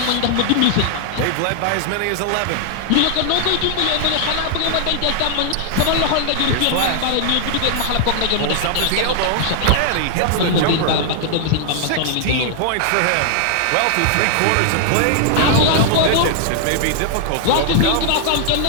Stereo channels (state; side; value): different; both; correlation 0.00